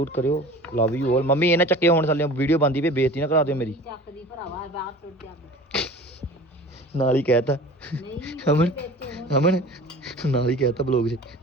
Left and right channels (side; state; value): both; normal; correlation 0.41